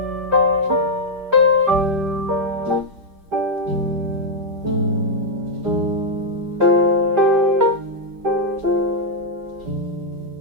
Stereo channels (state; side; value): late; left; 5.1 ms